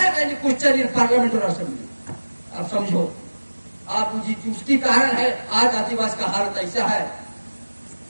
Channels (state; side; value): inverted; both; correlation -1.00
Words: any question in parliament और असेंबली। आप समझो, आप उसकी कारण है आज आदिवासी का हालत ऐसा है,